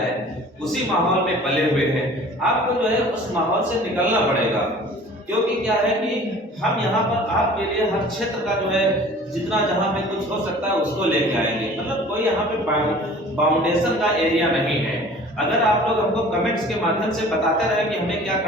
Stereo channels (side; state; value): both; normal; correlation 0.47